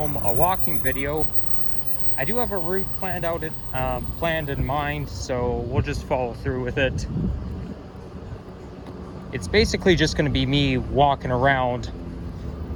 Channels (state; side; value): identical; both; correlation 1.00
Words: a walking video. I do have a route planned in mind, so we'll just follow through with it. It's basically just going to be me walking around